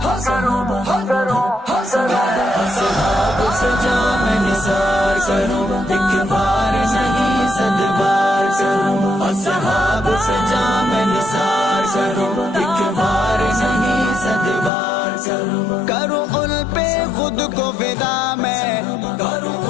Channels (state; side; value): drops out; right; at 14.7 s